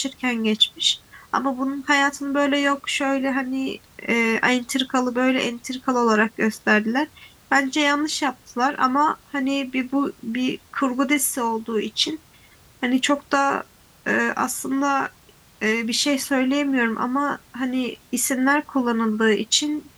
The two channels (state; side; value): identical; both; correlation 1.00